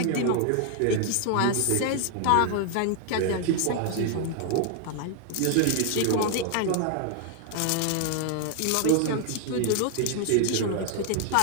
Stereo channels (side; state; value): both; different; correlation 0.00